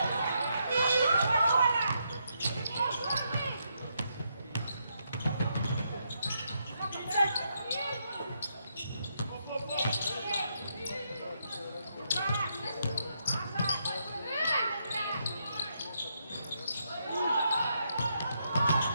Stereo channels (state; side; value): inverted; both; correlation -0.79